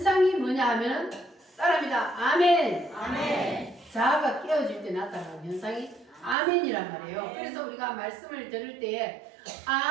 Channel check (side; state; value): left; drops out; at 6.4 s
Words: 뭐냐 하면 따라합니다. 아멘. 아멘. 자아가 깨어질 때 나타나는 현상이 아멘이란 말이에요. 그래서 우리가 말씀을 들을 때에